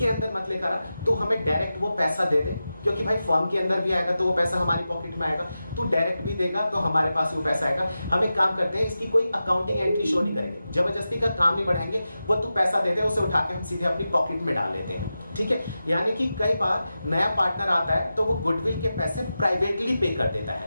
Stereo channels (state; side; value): inverted; both; correlation -0.92